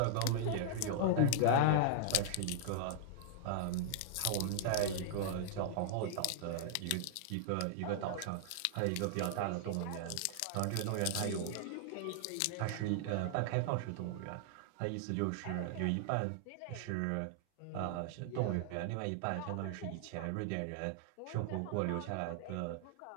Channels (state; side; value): different; both; correlation -0.01